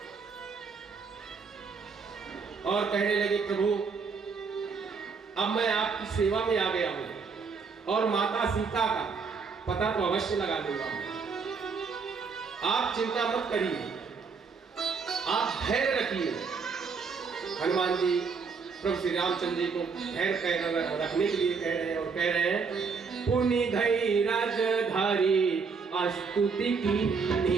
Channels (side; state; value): left; quieter; 5.2 dB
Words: और कहने लगे, प्रभु अब मैं आपकी सेवा में आ गया हूं और माता सीता का पता तो अवश्य लगा दूंगा, आप चिंता मत करिए, आप धैर्य रखिए। हनुमान जी प्रभु श्री रामचंद्र जी को धैर्य रखने के लिए कह रहे हैं और कह रहे हैं पुनि धई राजधारी स्तुति